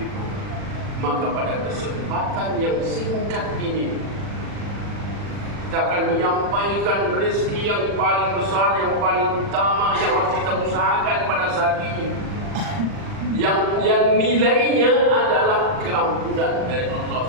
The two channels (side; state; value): left; late; 40 ms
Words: maka pada kesempatan yang singkat ini kita akan menyampaikan rezeki yang paling besar, yang paling utama yang harus kita usahakan pada saat ini, yang nilainya adalah keampunan dari Allah